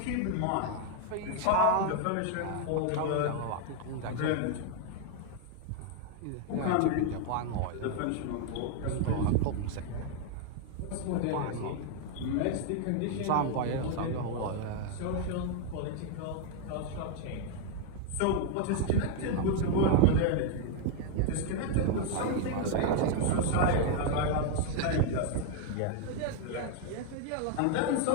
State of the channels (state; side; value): different; both; correlation 0.00